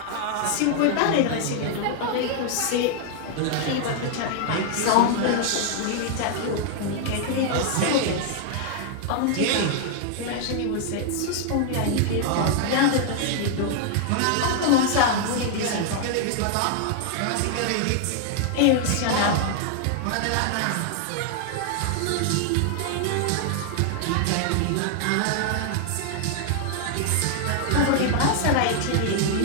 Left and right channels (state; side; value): different; both; correlation 0.00